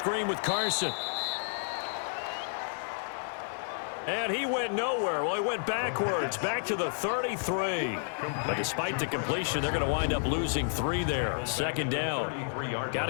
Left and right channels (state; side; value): silent; right; 57 dB below the other